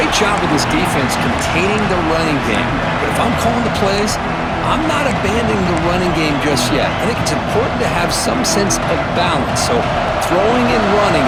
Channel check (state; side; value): identical; both; correlation 1.00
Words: job of this defense containing the running game. But if I'm calling the plays, I'm not abandoning the running game just yet. I think it's important to have some sense of balance. So throwing and running